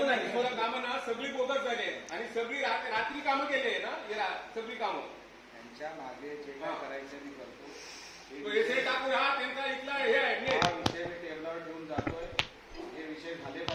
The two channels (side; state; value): both; identical; correlation 1.00